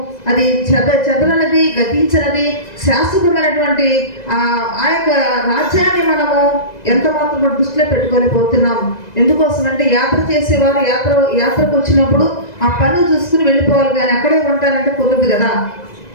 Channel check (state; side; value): late; right; 2.0 ms